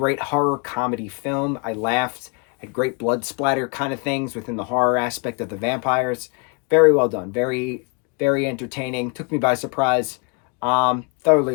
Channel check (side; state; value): right; quieter; 32.6 dB